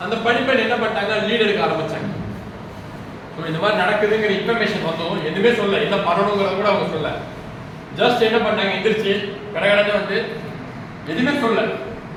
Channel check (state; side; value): identical; both; correlation 1.00